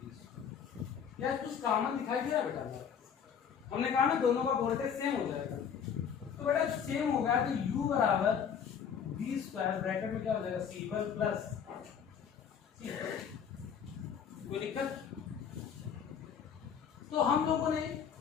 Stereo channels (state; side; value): quieter; right; 7.5 dB